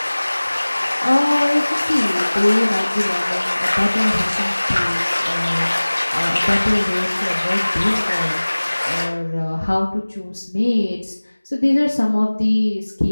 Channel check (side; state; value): both; inverted; correlation -1.00